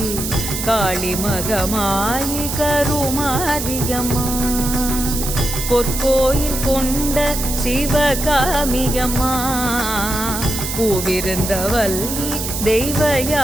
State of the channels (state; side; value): noise; right; hiss, 5 dB below the sound